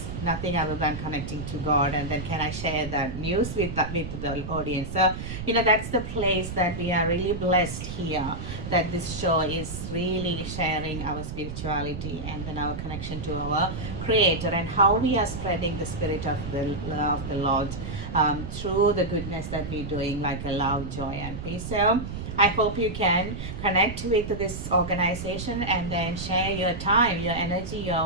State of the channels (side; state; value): right; noise; rumble, 7 dB below the sound